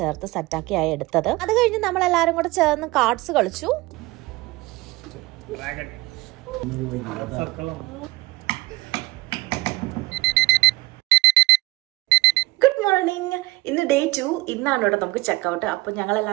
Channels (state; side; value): quieter; left; 21.0 dB